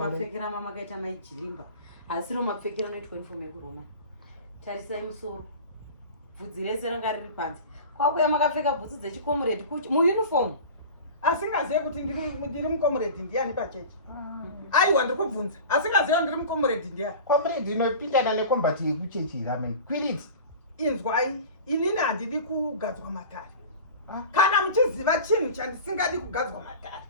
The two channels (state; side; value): inverted; both; correlation -0.36